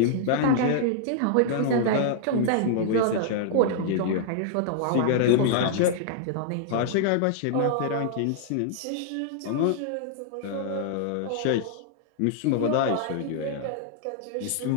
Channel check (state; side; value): different; both; correlation -0.01